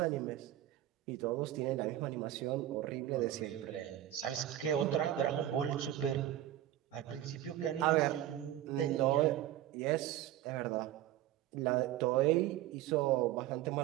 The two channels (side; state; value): left; quieter; 13.1 dB